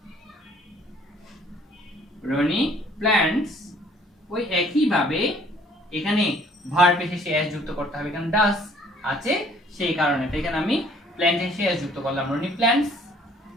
প্ল্যান্টস, ওই একই ভাবে এখানে ভার্ব এর শেষে এস যুক্ত করতে হবে, কারণ ডাস আছে সেই কারণে। তো এখানে আমি প্ল্যান্ট এর শেষে এস যুক্ত করলাম, Roni plants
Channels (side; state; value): both; normal; correlation 0.58